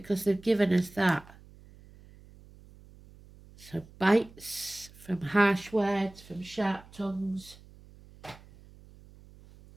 they've given us that. So bites from harsh words, from sharp tongues.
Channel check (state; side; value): noise; right; hum, 23 dB below the sound